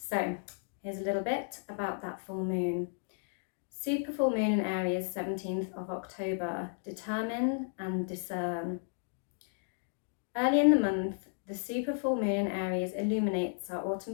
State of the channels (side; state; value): right; silent; digital silence